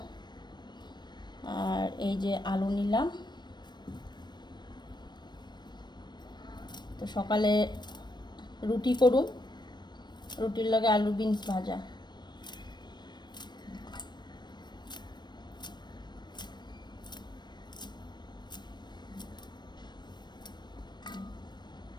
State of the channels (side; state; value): right; late; 0.21 ms